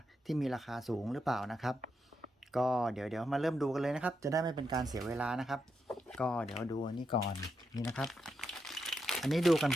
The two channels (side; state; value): both; normal; correlation 0.83